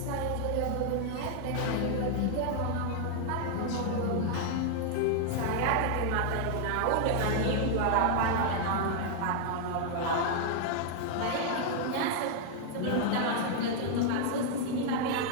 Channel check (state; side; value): different; both; correlation 0.00